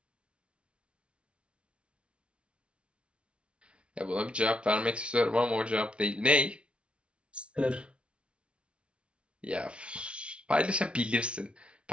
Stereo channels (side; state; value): left; late; 0.059 ms